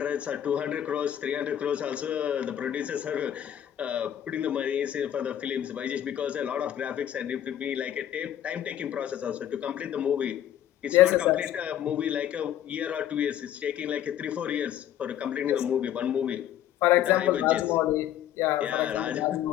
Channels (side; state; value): right; quieter; 10.9 dB